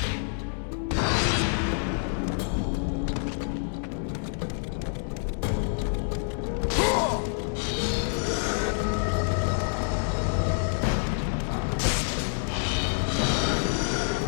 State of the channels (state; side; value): silent; right; 60 dB below the other